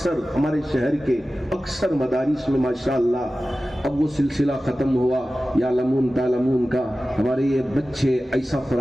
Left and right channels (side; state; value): both; normal; correlation 0.95